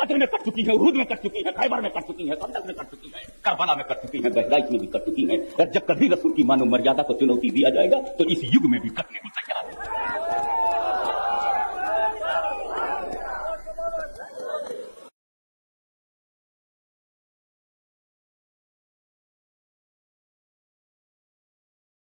में कट चुकी है, उहद में कट चुकी है, खैबर में कट चुकी है, खंदक में कट चुकी है, करबला में कट चुकी है, बहराइच में भी कट चुकी है। और जब कभी रसूल की मानव मर्यादा को चुनौती दिया जाएगा तो इस युग में भी कटने को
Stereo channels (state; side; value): inverted; both; correlation -1.00